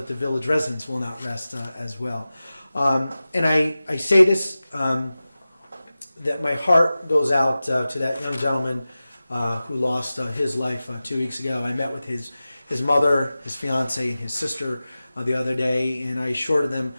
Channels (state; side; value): inverted; both; correlation -0.96